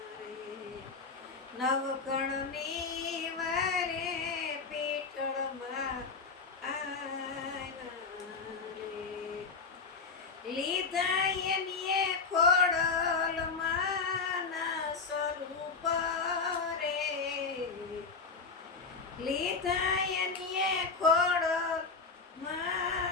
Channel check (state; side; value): quieter; right; 4.7 dB